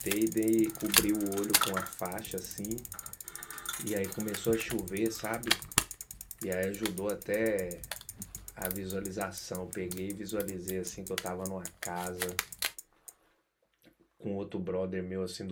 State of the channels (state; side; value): identical; both; correlation 1.00